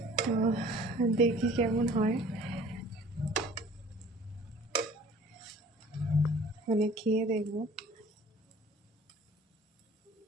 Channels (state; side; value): normal; both; correlation 0.50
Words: তো দেখি কেমন হয়, মানে খেয়ে দেখবো।